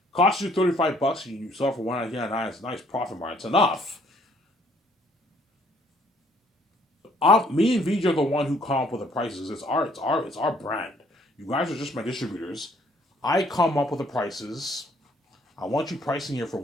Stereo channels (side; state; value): both; normal; correlation 0.63